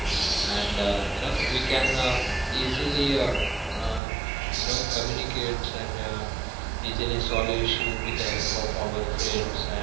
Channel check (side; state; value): left; drops out; at 4.0 s